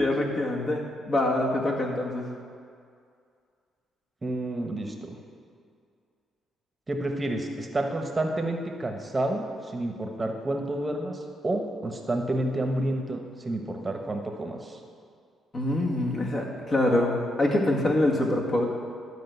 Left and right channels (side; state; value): both; normal; correlation 0.81